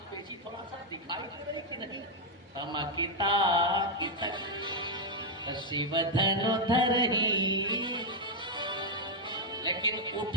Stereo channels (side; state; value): both; normal; correlation 0.00